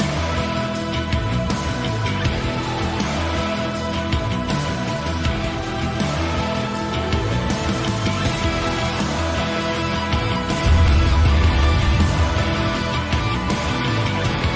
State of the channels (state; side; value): identical; both; correlation 1.00